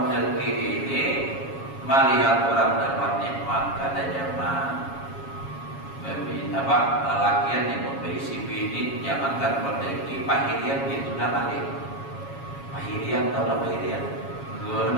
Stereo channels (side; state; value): right; late; 7.2 ms